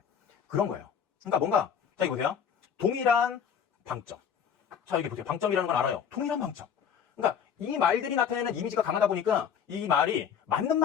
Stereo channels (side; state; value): right; quieter; 7.7 dB